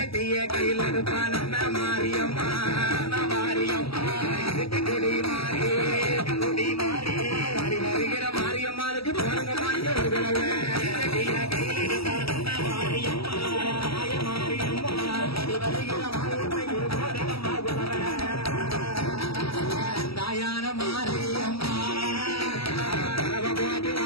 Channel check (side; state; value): right; late; 0.76 ms